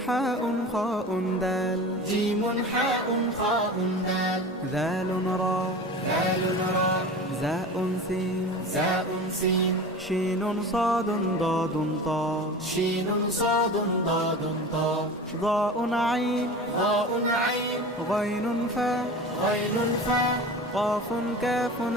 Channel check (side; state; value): both; normal; correlation 0.34